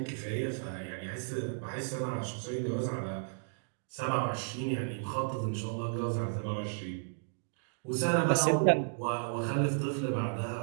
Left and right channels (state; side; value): silent; left; digital silence